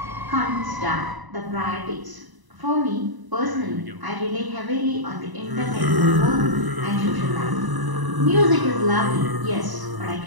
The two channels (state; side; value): late; left; 1.0 ms